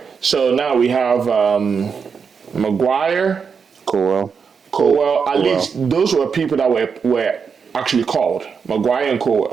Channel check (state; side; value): quieter; left; 6.0 dB